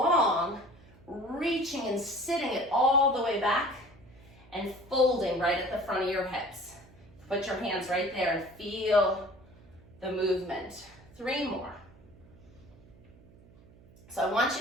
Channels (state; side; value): noise; right; hum, 25 dB below the sound